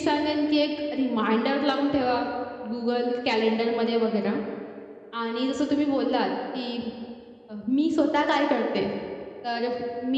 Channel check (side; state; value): both; identical; correlation 1.00